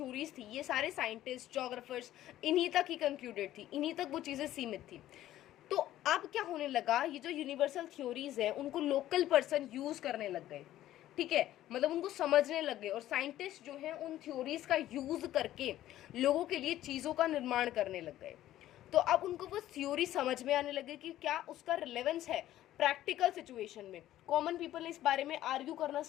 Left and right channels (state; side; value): quieter; right; 13.6 dB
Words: थी, ये सारे साइंटिस्ट, ज्योग्राफर्स, इन्हीं तक ही कंक्लूडेड थी, इन्हीं तक वो चीज़ें सीमित थी। तो अब क्या होने लगा, ये जो यूनिवर्सल थ्योरीज है उनको लोकल पर्सन यूज करने लग गए। ठीक है, मतलब उनको समझने लग गए, और साइंटिस्ट जो हैं उन थ्योरीज का यूज करके लोगों के लिए चीज़ों का निर्माण करने लग गए। तो अब उनको वो थ्योरी समझ में आने लगे कि क्या उसका रिलेवेंस है प्रैक्टिकल सिचुएशन में। कॉमन पीपल ने इस बारे में आर्ग्यू करना